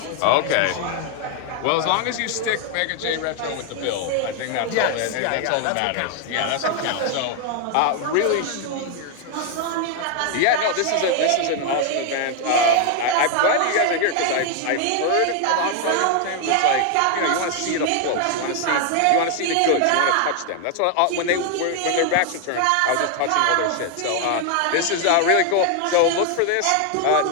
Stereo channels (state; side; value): different; both; correlation 0.00